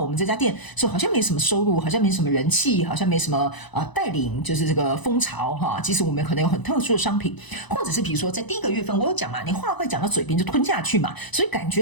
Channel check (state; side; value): late; right; 1.0 ms